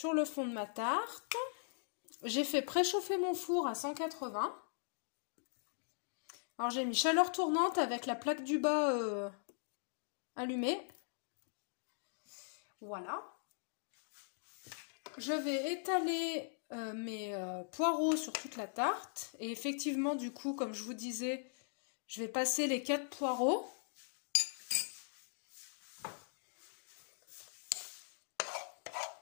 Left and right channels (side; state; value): right; silent; digital silence